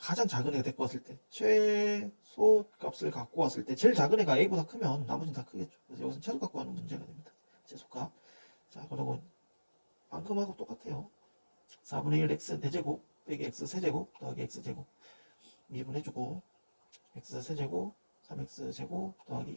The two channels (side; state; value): both; inverted; correlation -1.00